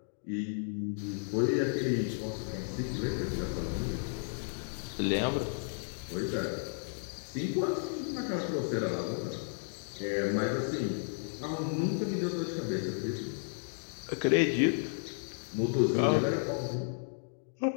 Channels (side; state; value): right; silent; digital silence